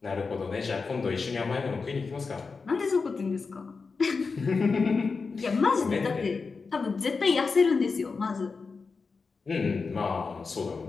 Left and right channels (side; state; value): right; quieter; 4.6 dB